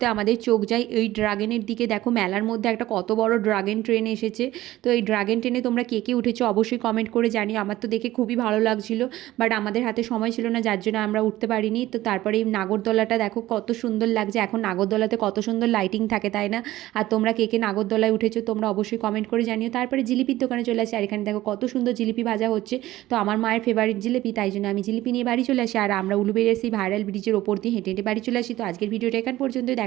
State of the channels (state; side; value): quieter; left; 15.9 dB